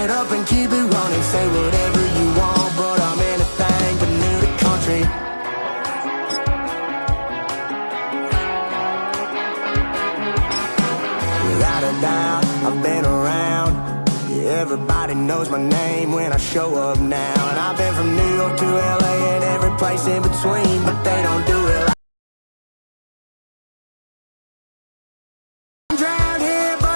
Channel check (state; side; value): inverted; both; correlation -1.00